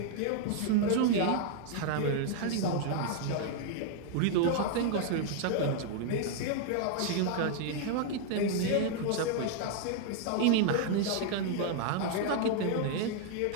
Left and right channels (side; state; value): both; different; correlation 0.00